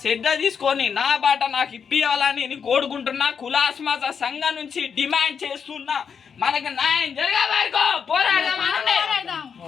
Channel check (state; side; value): quieter; right; 6.7 dB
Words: శ్రద్ధ తీసుకొని నా బాట నాకు ఇప్పియాలని నేను కోరుకుంటున్నా. కులాస్మాస సంఘం నుంచి డిమాండ్ చేస్తున్నా. మనకు న్యాయం జరిగే వరకు పోరాడదాం.